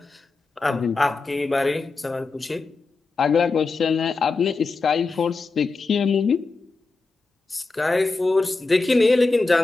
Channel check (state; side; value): quieter; right; 3.8 dB